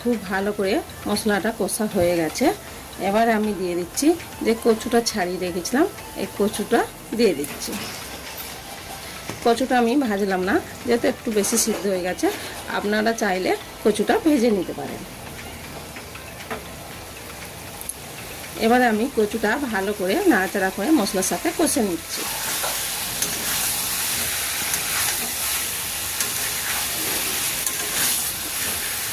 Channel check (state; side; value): identical; both; correlation 1.00